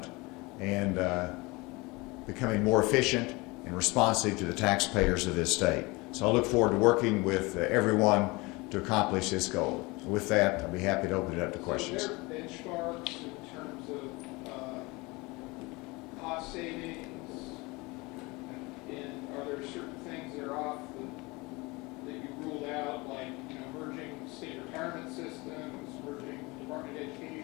and becoming more efficient and responsive to the taxpayers of this state. So I look forward to working with everyone to accomplish this goal. With that, I'll be happy to open it up to questions. So are there benchmarks in terms of cost savings? And are there certain things that are off that you ruled out, like merging state retirement systems, merging Department of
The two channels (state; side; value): quieter; right; 24.5 dB